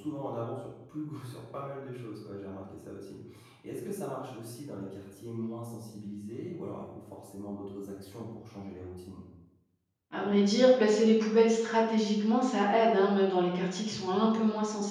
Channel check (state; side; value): identical; both; correlation 1.00